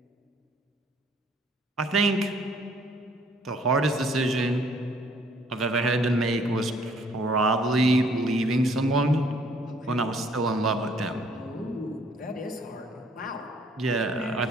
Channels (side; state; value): both; normal; correlation 0.62